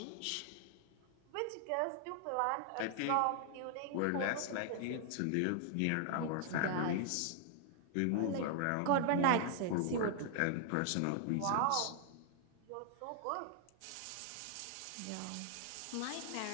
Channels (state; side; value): different; both; correlation 0.00